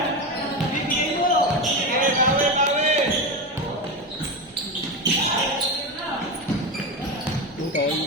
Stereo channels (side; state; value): both; normal; correlation 0.17